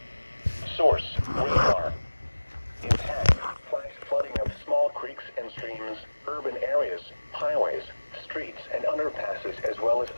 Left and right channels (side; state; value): both; inverted; correlation -1.00